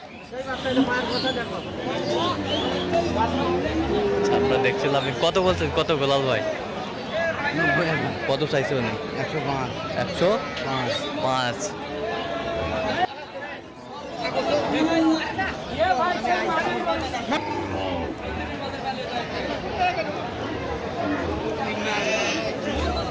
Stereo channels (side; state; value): both; identical; correlation 1.00